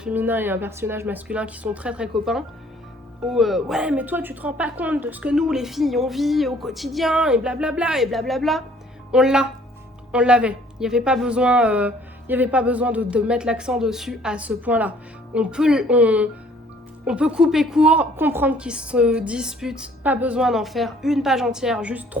et un personnage masculin qui sont très très copains. Où ouais, mais toi, tu te rends pas compte de ce que nous, les filles, on vit au quotidien, et blablabla, et blablabla. On l'avait. Il n'y avait pas besoin, de mettre l'accent dessus à ce point-là. On peut couper court, comprendre qu'ils se disputent, pas besoin d'en faire une page entière, juste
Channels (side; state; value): both; normal; correlation 0.58